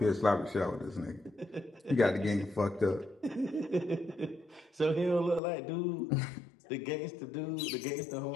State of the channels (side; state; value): right; drops out; at 5.4 s